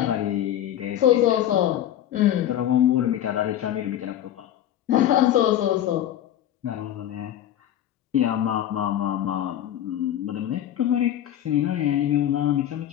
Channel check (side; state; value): right; quieter; 11.5 dB